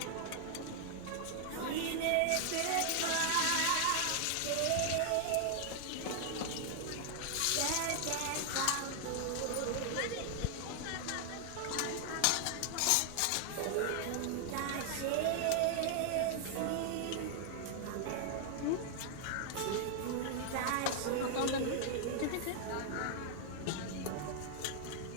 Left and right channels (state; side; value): different; both; correlation 0.00